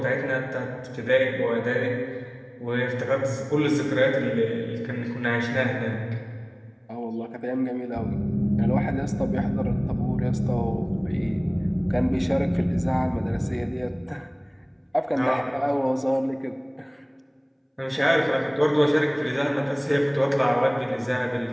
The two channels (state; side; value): identical; both; correlation 1.00